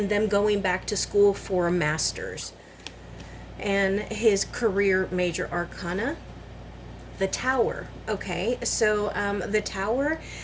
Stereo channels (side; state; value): both; identical; correlation 1.00